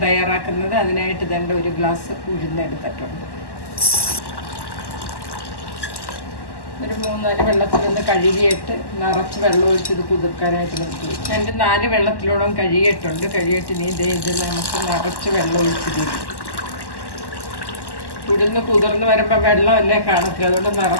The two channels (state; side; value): late; right; 1.1 ms